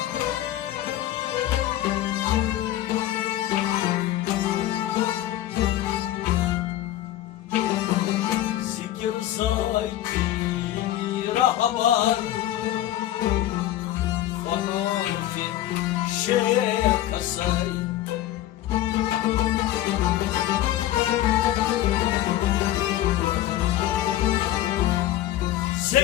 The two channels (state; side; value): quieter; right; 13.5 dB